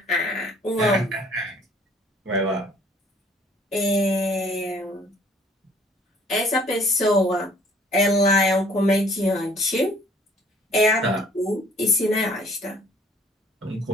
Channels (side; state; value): both; normal; correlation 0.58